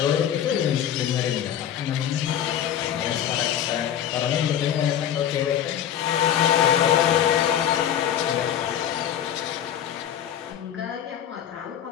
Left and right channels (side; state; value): right; quieter; 10.1 dB